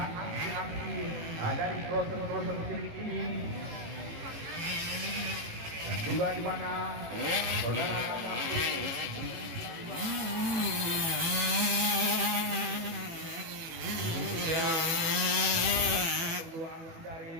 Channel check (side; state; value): left; late; 18 ms